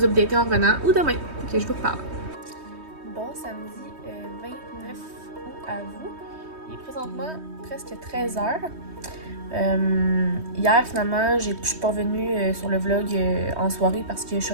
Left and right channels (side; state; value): left; late; 3.2 ms